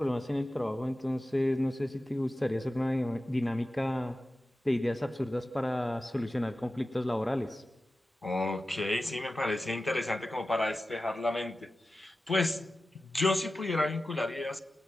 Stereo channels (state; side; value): normal; both; correlation 0.94